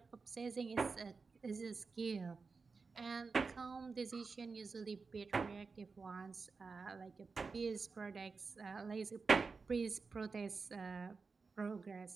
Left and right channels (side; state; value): left; quieter; 4.6 dB